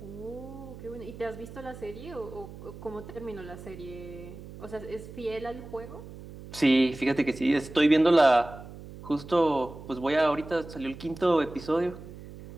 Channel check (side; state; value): right; noise; hum, 14 dB below the sound